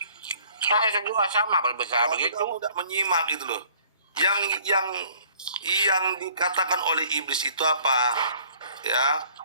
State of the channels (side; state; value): both; inverted; correlation -0.55